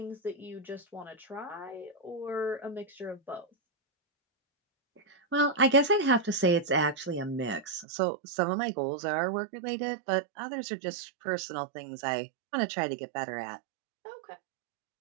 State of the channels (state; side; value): drops out; left; at 7.9 s